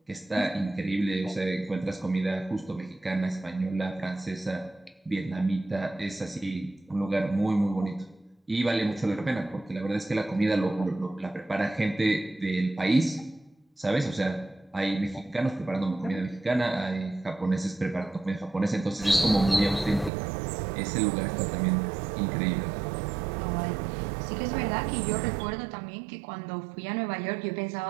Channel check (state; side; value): drops out; left; at 20.1 s